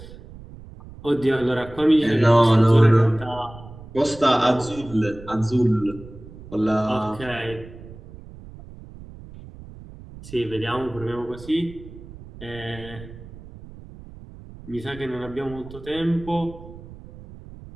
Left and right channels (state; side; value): noise; right; rumble, 17 dB below the sound